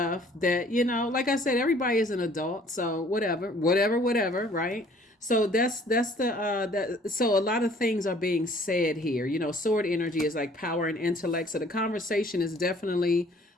that, like I said, everybody is an adult, so whatever, right? So that's that. So a lot of things are being said here. Sword energy is like power and intellect. So the conversation is definitely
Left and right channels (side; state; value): both; normal; correlation 0.56